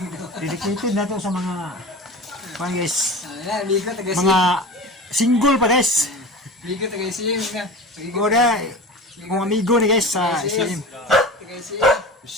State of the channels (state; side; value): normal; both; correlation 0.33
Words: Dedicated na to sa mga guys, mga single pa guys. Oda, mga amigo ni guys sa SM.